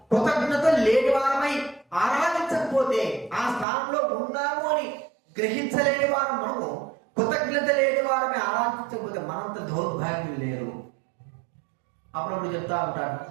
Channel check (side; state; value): left; drops out; at 3.7 s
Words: కృతజ్ఞత లేని వారమై ఆరాధించకపోతే, ఆ స్థానంలో ఉన్నాము అని గ్రహించలేని వారు మనము, కృతజ్ఞత లేని వారమే ఆరాధించకపోతే మనంత దౌర్భాగ్యం లేరు. అప్పుడప్పుడు చెప్తా ఉంటాను,